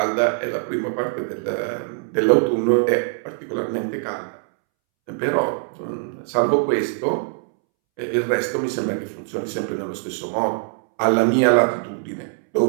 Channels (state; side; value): silent; left; 64 dB below the other